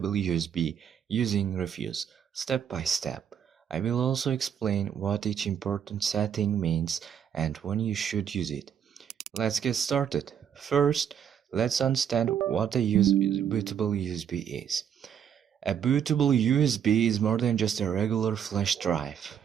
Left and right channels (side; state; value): left; quieter; 8.5 dB